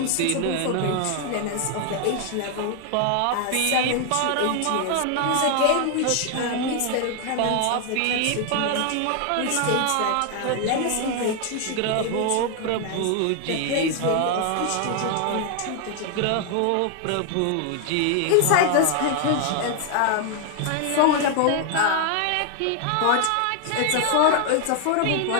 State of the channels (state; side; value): different; both; correlation 0.00